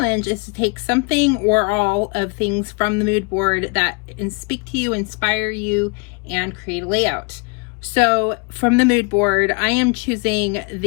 is to take something or all of things from the mood board that speak to you, inspire you, and create a layout. So from the mood board, I am choosing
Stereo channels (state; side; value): quieter; right; 31.4 dB